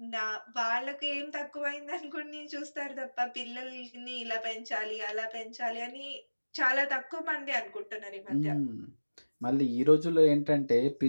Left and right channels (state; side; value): inverted; both; correlation -1.00